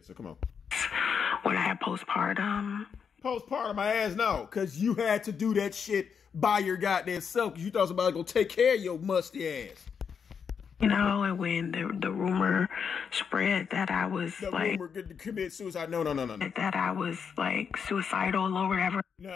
so come on. When I had postpartum. Postpartum, my ass, no. Because you had to do that shit by your goddamn self. Because you thought somebody was going to take care of your musty ass. You know, and when the rumor spread that I was the like... rumor to commit suicide. No. That I was like suicidal or whatever.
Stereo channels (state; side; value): quieter; right; 6.7 dB